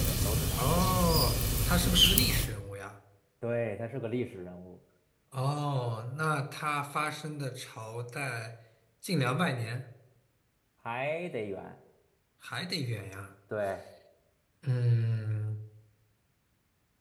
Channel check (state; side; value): identical; both; correlation 1.00